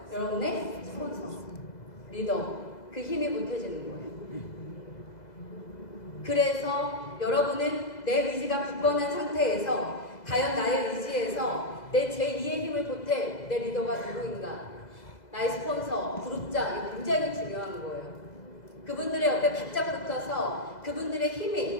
여러분의 스폰서, 리더, 그 힘이 보태지는 거예요. 그래서 여러분은 내 의지가 굳건한 상태에서 과연 나의 의지에서 내 제2의 힘을 보탤 내 리더가 누구인가? 나의 스폰서, 그룹장, 이게 굉장히 중요한 거예요. 그분들의 옆에 바짝 붙어서 그분들의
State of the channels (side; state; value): right; late; 2.0 ms